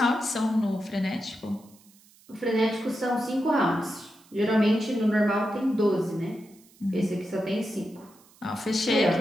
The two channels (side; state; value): right; noise; hiss, 28 dB below the sound